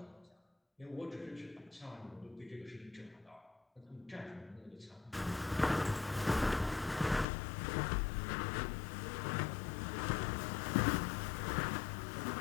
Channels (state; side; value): drops out; right; at 7.2 s